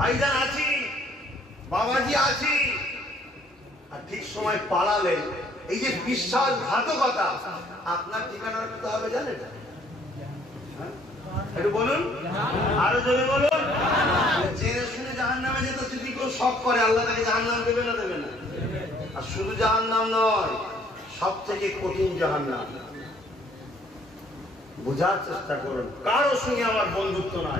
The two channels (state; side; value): normal; both; correlation 0.61